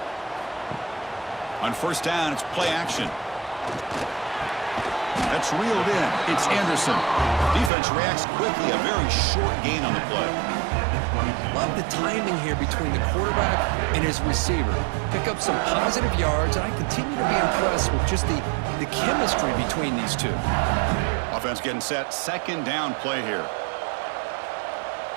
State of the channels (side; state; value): left; drops out; at 7.7 s